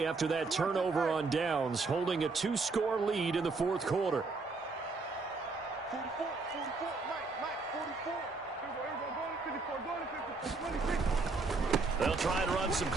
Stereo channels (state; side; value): quieter; left; 3.9 dB